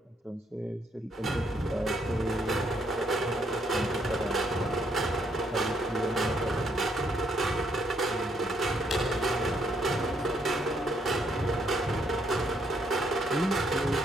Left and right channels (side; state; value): both; normal; correlation 0.72